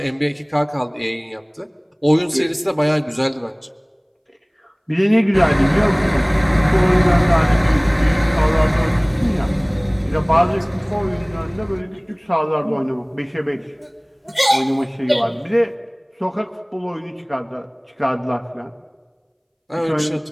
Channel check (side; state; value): both; identical; correlation 1.00